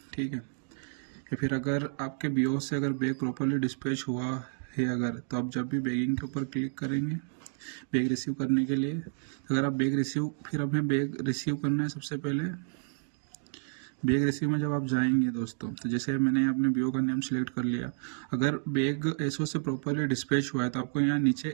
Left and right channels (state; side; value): silent; left; digital silence